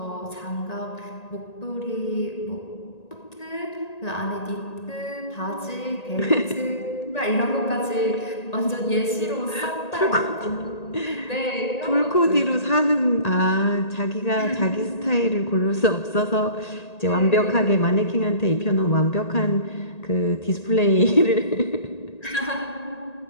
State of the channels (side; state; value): right; late; 1.8 ms